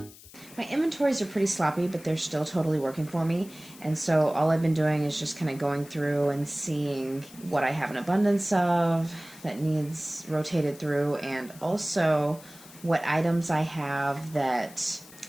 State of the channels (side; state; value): left; noise; hiss, 20 dB below the sound